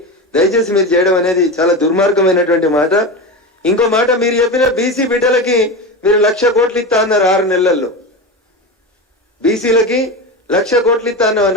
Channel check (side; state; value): both; normal; correlation 0.22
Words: దయచేసి మీరు చేయడం అనేది చాలా దుర్మార్గమైనటువంటి మాట. ఇంకో మాట, మీరు చెప్పిన బీసీ బిడ్డలకి మీరు 1,00,000 కోట్లు ఇస్తా అన్నారు 6 నెలల్లో. బీసీలకి 1,00,000 కోట్లు ఇస్తా అన్న